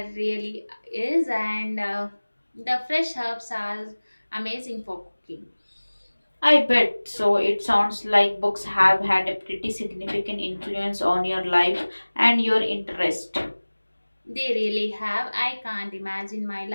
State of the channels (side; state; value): both; inverted; correlation -1.00